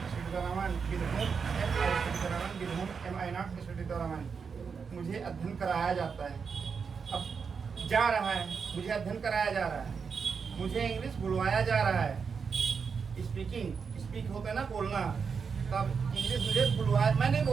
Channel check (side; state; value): left; quieter; 5.8 dB